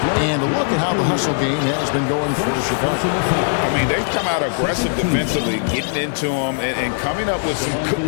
And look at how the hustle game has been going for Chicago. I mean, they've come out aggressive defensively, getting into them and coming up with some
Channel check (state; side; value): silent; right; digital silence